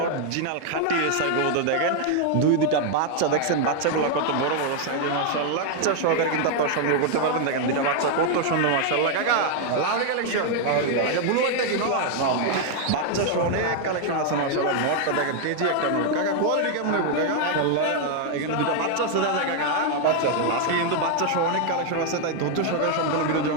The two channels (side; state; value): both; different; correlation 0.00